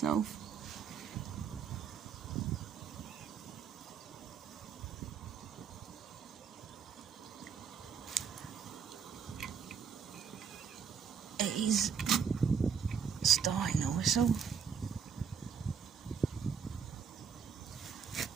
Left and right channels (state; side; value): quieter; left; 6.8 dB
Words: He's starting to whistle.